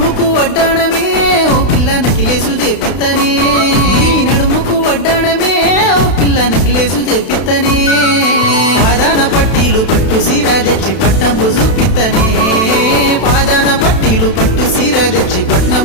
నడుముకు వడ్డాణమే ఓ పిల్ల నకిలేసు చేపిత్తనే నీ నడుముకు వడ్డాణమే ఓ పిల్ల నకిలేసు చేపిత్తనే పాదాన పట్టీలు పట్టు సీర తెచ్చి పట్నంబు చూపిత్తనే పాదాన పట్టీలు పట్టు సీర తెచ్చి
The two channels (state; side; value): late; right; 32 ms